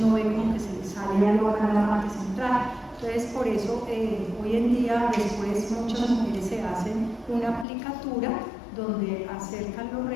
uno ve como que se les sale algo acá en la parte central. Entonces por eso hoy en día después muchas mujeres se hacen una aplicatura donde acercan los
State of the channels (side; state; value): right; drops out; at 7.7 s